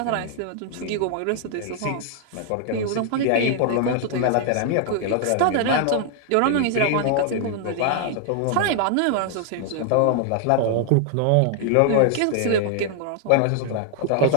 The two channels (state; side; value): different; both; correlation 0.00